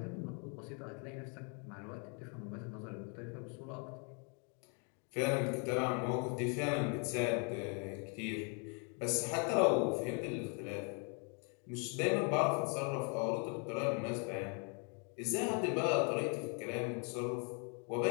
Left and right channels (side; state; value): right; quieter; 37.6 dB